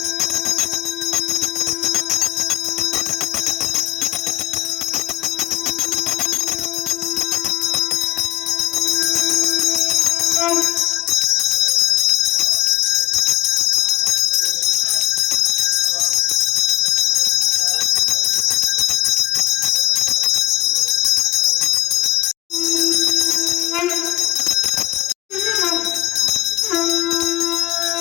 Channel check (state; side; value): quieter; right; 17.0 dB